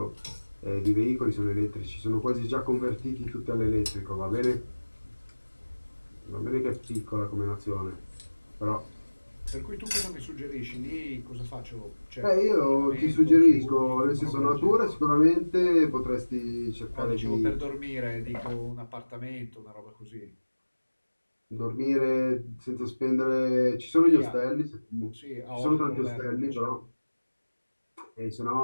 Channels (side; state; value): both; inverted; correlation -1.00